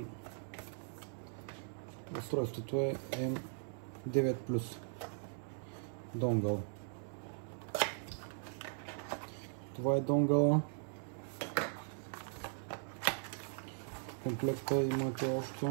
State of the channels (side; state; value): left; silent; 52 dB below the other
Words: устройството е M9 Plus донгъл. Това е донгъла. В комплекта имате още